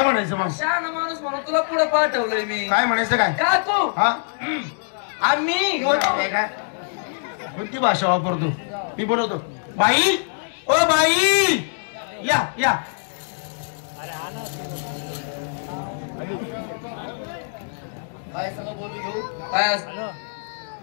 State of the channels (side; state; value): right; silent; digital silence